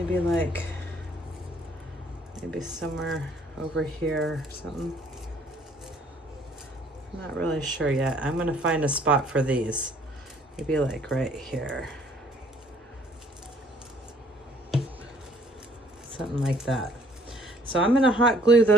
somewhere over here or something. I'm not really sure yet. I'm gonna find a spot for these. Maybe like right here. Something like that. So I'm gonna hot glue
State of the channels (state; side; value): normal; both; correlation 0.61